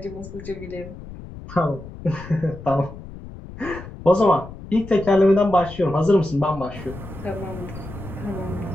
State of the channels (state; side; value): noise; left; rumble, 14 dB below the sound